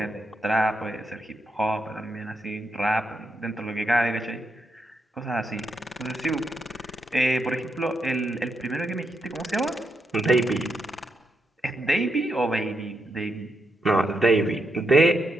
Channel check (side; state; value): both; normal; correlation 0.82